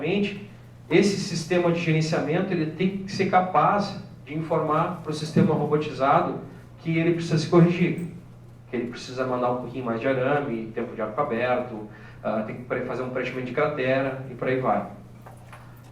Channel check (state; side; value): identical; both; correlation 1.00